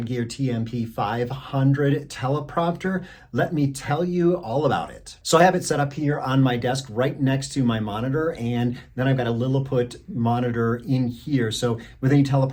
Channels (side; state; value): both; identical; correlation 1.00